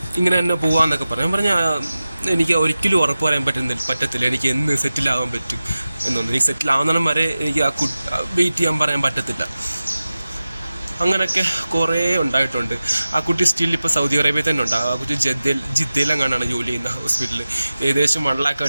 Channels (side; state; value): both; inverted; correlation -0.95